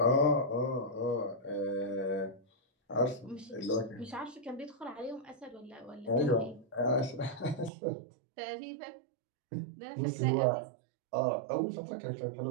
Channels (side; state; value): left; drops out; at 7.7 s